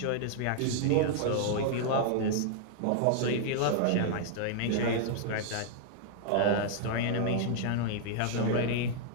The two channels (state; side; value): different; both; correlation -0.01